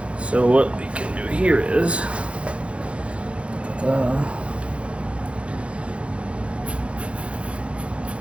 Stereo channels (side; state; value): left; late; 0.060 ms